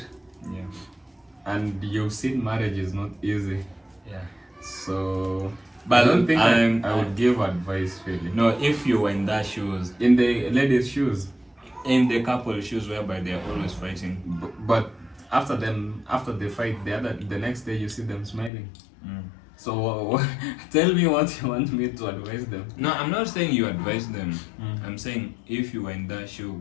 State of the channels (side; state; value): right; drops out; at 18.5 s